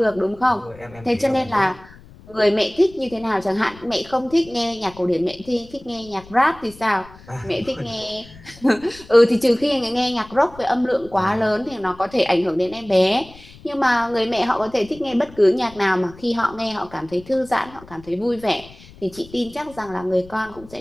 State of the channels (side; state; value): left; noise; rumble, 21 dB below the sound